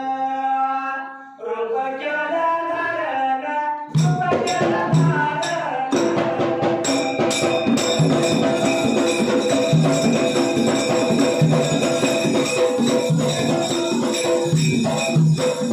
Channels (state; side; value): identical; both; correlation 1.00